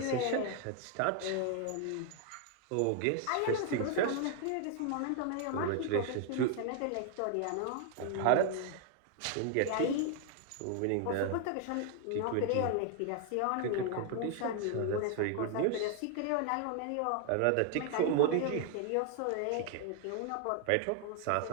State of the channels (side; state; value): both; different; correlation 0.00